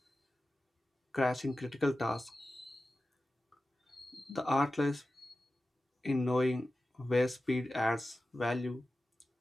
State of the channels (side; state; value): both; normal; correlation 0.94